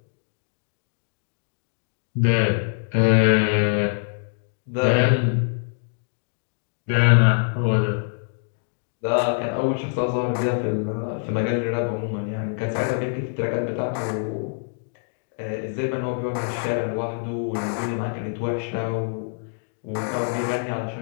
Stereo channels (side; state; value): right; silent; digital silence